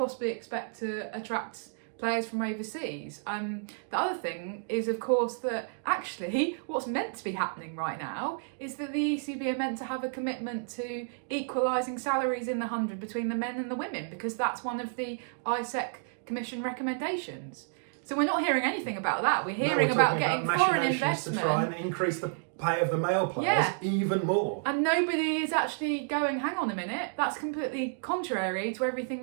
expect to attract players from overseas? The other thing is, of course, that actually what's meant to be happening right now is that the ECB are meant to have a commitment to equalising salaries in the 100 between the men and the women, because that's one of the ISEC Commission recommendations. So we're not hearing anything about that. We're hearing about getting foreign investment to try and increase the pay of the male players even more. And nobody is actually going, hang on a minute, that's completely contrary to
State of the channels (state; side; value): silent; left; digital silence